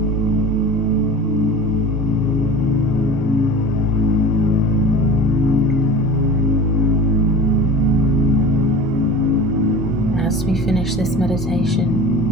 As we finish this meditation,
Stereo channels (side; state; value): both; normal; correlation 0.37